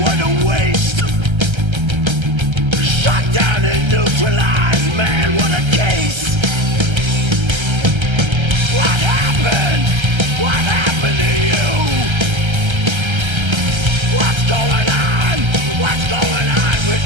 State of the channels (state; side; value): late; left; 1.3 ms